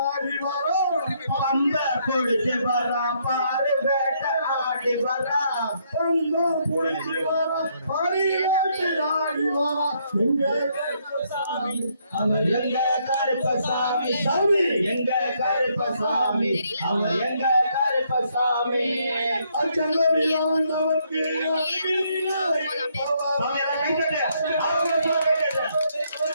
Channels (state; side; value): inverted; both; correlation -0.72